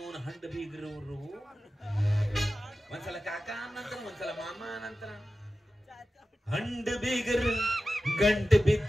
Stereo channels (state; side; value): normal; both; correlation 0.94